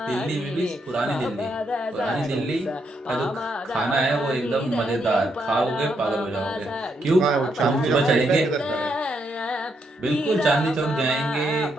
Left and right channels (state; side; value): normal; both; correlation 0.78